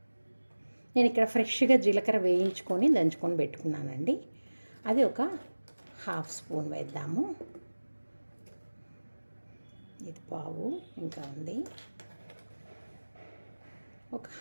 నేను ఇక్కడ ఫ్రెష్గా జీలకర్ర వేయించుకొని దంచుకొని పెట్టుకున్నానండి. అది ఒక హాఫ్ స్పూన్ వేద్దాము. ఇది పావు ఇంకా ఉంది. ఒక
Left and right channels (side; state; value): both; inverted; correlation -1.00